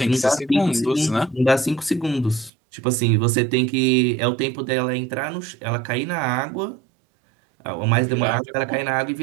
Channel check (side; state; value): left; drops out; at 2.5 s